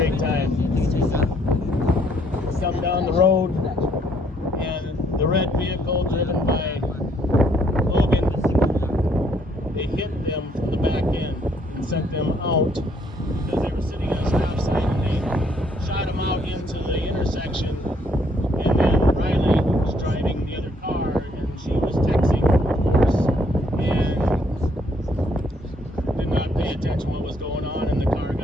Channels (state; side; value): normal; both; correlation 0.68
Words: time. Some down the road, and the red vehicle driven by Logan, they hit them from the back end and sent them out because they were sitting on a stop sign, and they shot them out into the intersection. And then Riley was driving the other car, and she was texting, of course, and did not pay attention to what was going on, and the car